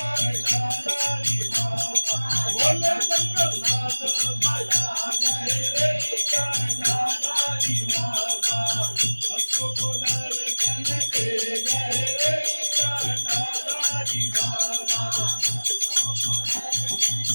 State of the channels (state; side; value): inverted; both; correlation -1.00